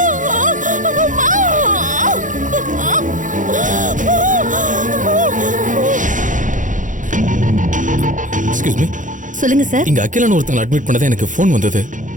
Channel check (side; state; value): left; late; 0.37 ms